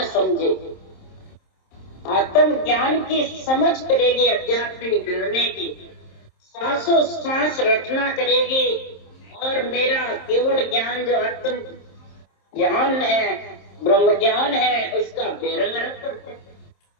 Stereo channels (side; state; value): right; late; 27 ms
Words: समझेगी, आत्म ज्ञान की समझ करेगी, आध्यात्मिक निर्णय की सांसों सांस रचना करेगी, और मेरा केवल ज्ञान जो आत्म ज्ञान है, ब्रह्म ज्ञान है, उसका बेरंग करते